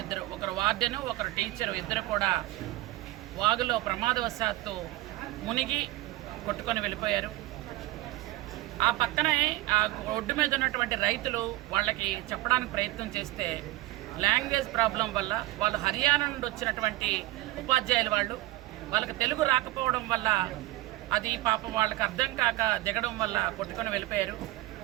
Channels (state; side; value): quieter; left; 18.2 dB